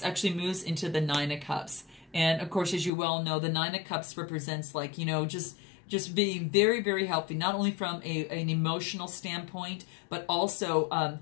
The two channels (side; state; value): right; drops out; at 2.9 s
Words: actually moves into the Nine of Cups. And, of course, as you well know, the Nine of Cups represents, like, just being very, very healthy, not only from an emotional standpoint, but also